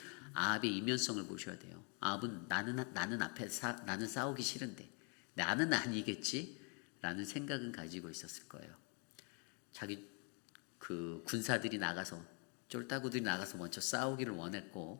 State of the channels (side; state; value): right; quieter; 34.6 dB